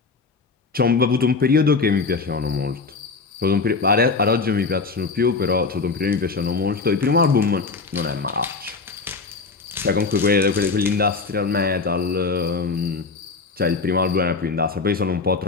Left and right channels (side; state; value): right; quieter; 4.4 dB